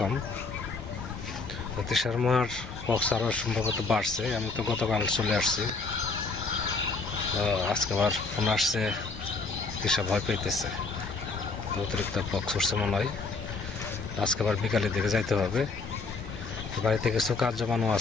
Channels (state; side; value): quieter; right; 4.0 dB